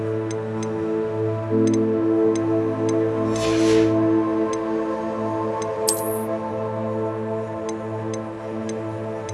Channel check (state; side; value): identical; both; correlation 1.00